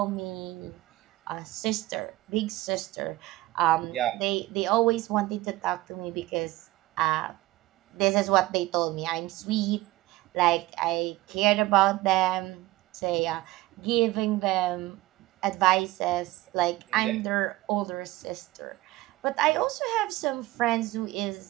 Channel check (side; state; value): left; quieter; 18.0 dB